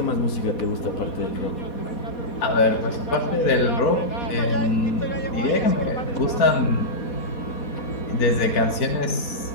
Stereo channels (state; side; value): late; right; 4.2 ms